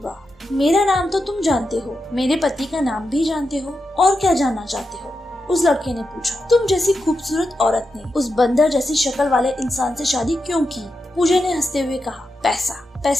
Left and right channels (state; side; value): normal; both; correlation 0.88